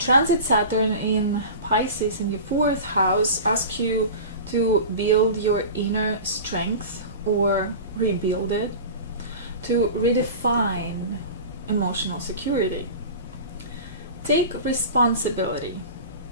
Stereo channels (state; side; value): inverted; both; correlation -0.33